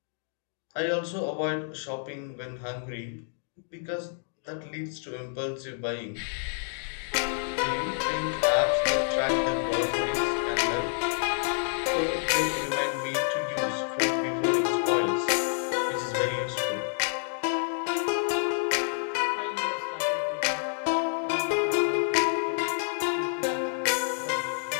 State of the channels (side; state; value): right; silent; digital silence